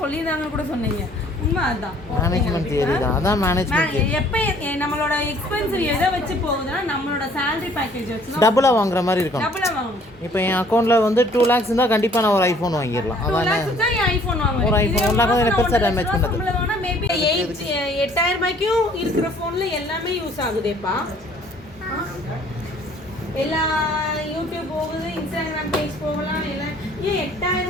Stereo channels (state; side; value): normal; both; correlation 0.57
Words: கூட சொன்னீங்க, உண்மை அதுதான். மேனேஜ்மென்ட் தியரி தான், அதான் மேனேஜ்மென்ட். எப்போ நம்மளோட எக்ஸ்பென்சிவ் எதை வச்சு போகுதுன்னா நம்மளோட சேலரி பேக்கேஜ் வச்சு டபுளா வாங்குற மாதிரி இருக்கும். டபுளா வாங்கணும். இப்போ என் அக்கௌண்ட்ல வந்து 2 lakhs இருந்தா கண்டிப்பா நான் ஒரு ஐபோன் வாங்கிடலாம். அதானே ஐபோன் வாங்குவேன். ஒரு ஐபோன் 1 lakh வந்து பெருசா டேமேஜ் பண்ணது. மேபி 8,000 ரூபாய்க்கும் இருக்கிற ஃபோன்ல எல்லாமே யூஸ் ஆகுதேப்பா. எல்லா யூடியூப் போகுது, இன்ஸ்டாகிராம் பேஜ் போகலாம். எல்லாம் ஏன் 8,000